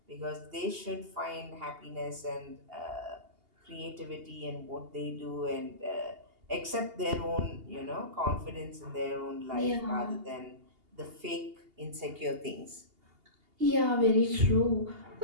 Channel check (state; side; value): late; left; 2.8 ms